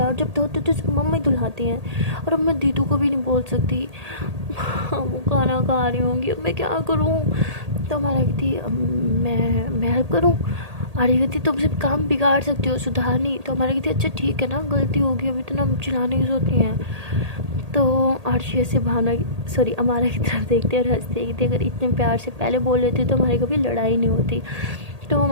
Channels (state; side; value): late; left; 1.8 ms